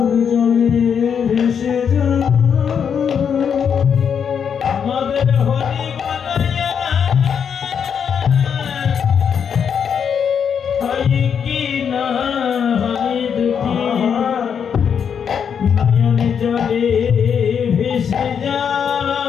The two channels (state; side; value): quieter; right; 7.4 dB